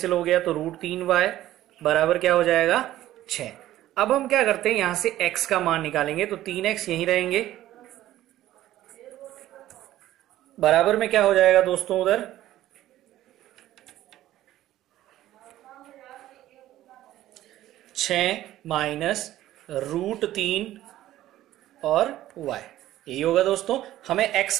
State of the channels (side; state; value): left; quieter; 14.1 dB